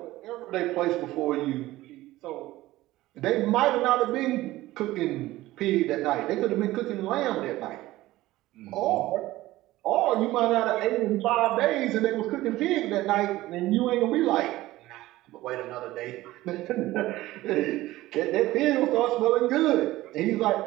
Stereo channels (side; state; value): left; quieter; 17.0 dB